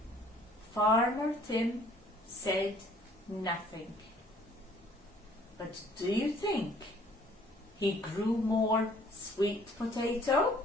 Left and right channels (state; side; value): normal; both; correlation 0.57